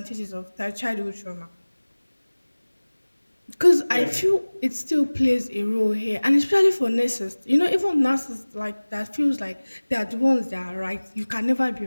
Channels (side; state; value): both; inverted; correlation -1.00